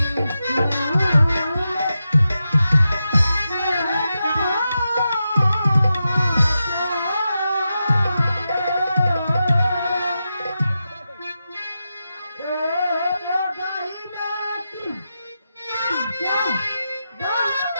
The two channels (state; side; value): inverted; both; correlation -0.89